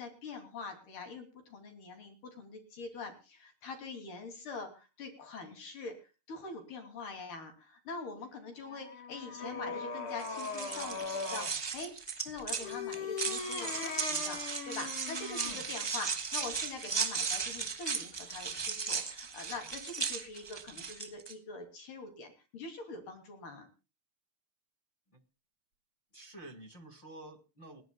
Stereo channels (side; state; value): right; late; 6.7 ms